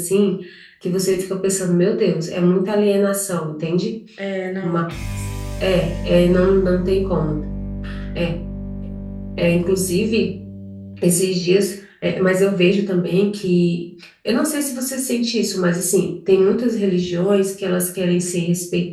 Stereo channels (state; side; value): identical; both; correlation 1.00